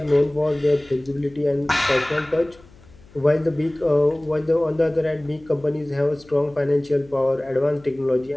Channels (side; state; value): left; noise; hum, 25 dB below the sound